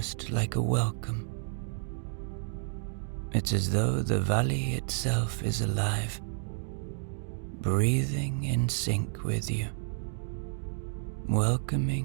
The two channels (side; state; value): left; silent; digital silence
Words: like a welcome. It's as though the valley itself is alive, breathing in sync with you,